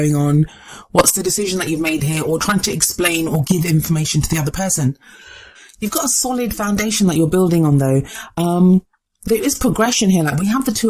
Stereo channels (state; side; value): identical; both; correlation 1.00